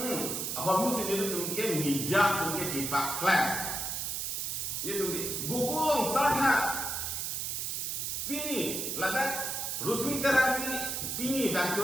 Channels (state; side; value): noise; right; hiss, 2 dB below the sound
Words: Ahor musi nila tungke mijak tungke di Paklan. Nila tungke gugulong sarha. Pini, ladak Rusmi Terang Pini dan